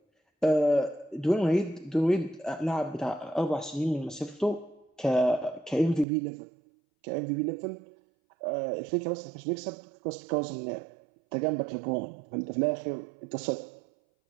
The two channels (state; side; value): drops out; left; at 6.1 s